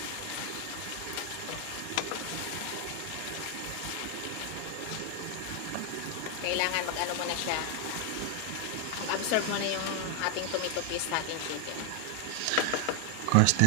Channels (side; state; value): both; different; correlation 0.00